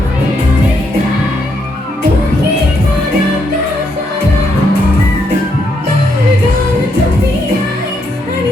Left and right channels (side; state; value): both; normal; correlation 0.76